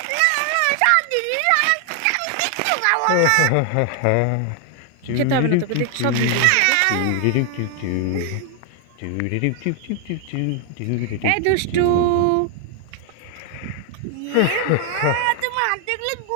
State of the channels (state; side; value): different; both; correlation 0.00